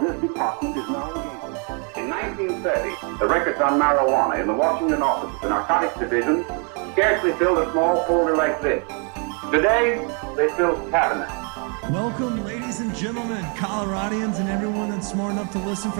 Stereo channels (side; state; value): left; quieter; 37.7 dB